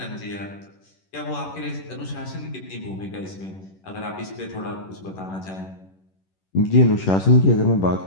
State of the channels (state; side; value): late; right; 11 ms